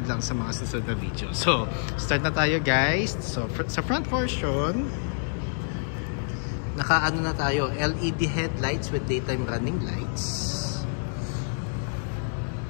lang sa mga susunod na video. So, start na tayo guys. So, sa front portion, nakaano na tayo, LED headlights with daytime running lights.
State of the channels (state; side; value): silent; right; digital silence